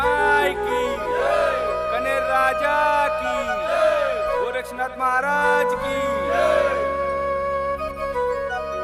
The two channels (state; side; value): identical; both; correlation 1.00